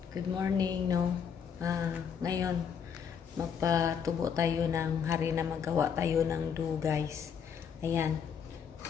good morning no. Ngayon magpatubo tayo ng hari na magawa tayo ng dough guys. Ayan,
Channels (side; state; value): right; quieter; 7.3 dB